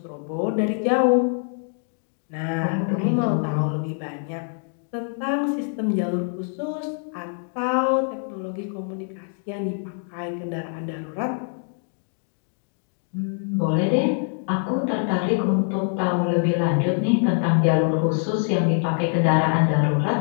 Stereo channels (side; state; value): right; silent; 57 dB below the other